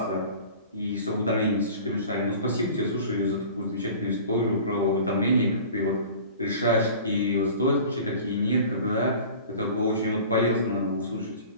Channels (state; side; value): inverted; both; correlation -0.42